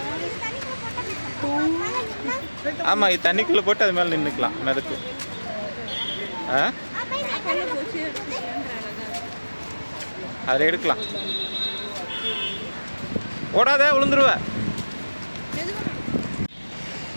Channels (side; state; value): both; inverted; correlation -1.00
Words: ஆமாம், இது தண்ணிக்குள்ளே போட்டு அது மேலே நின்றுக்கலாம், மிதக்கும். அதில் எடுக்கலாம். ஓடாத, விழுந்துருவ.